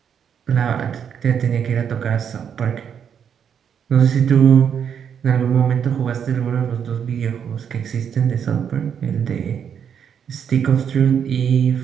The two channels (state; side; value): quieter; left; 7.9 dB